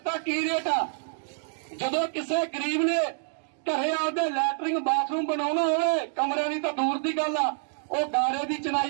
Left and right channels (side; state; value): left; silent; digital silence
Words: ਕੀ ਰੇਟ ਆ। ਜਦੋਂ ਕਿਸੇ ਗਰੀਬ ਨੇ ਘਰੇ ਆਪਦੇ ਲੈਟਰਿੰਗ ਬਾਥਰੂਮ ਬਣਾਉਣਾ ਹੋਵੇ, ਕਮਰਿਆਂ ਦੀ ਤਾਂ ਦੂਰ ਦੀ ਗੱਲ ਆ, ਉਹ ਗਾਰੇ ਦੀ